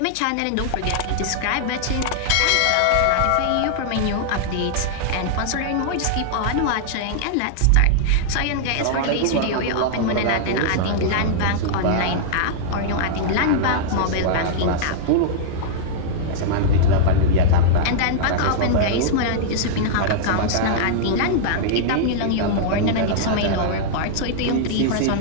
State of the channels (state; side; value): different; both; correlation -0.01